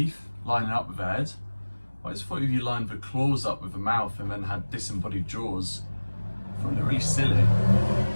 lining up with the head. I just thought if you lined the claws up with the mouth and then had disembodied jaws, I find it really silly.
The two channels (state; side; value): inverted; both; correlation -1.00